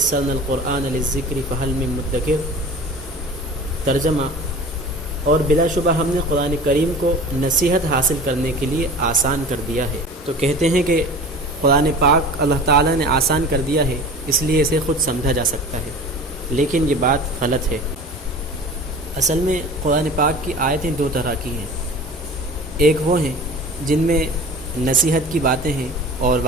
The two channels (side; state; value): both; normal; correlation 0.38